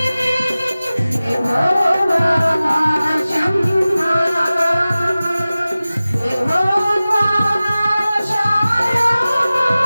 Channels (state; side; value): inverted; both; correlation -0.97